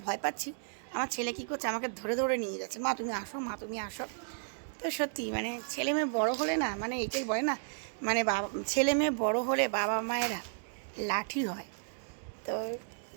ভয় পাচ্ছি, আমার ছেলে কী করছে, আমাকে ধরে ধরে নিয়ে যাচ্ছে, মা তুমি আসো, মা তুমি আসো। তো সত্যি মানে ছেলে মেয়ে বড়ো হলে না, মানে এটাই বলে না, মানে বাবা ছেলে মেয়ে বড়ো হলে বাবা মায়েরা লাঠি হয়। তো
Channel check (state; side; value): silent; left; digital silence